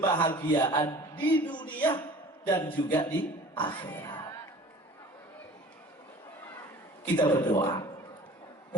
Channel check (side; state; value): both; normal; correlation 0.45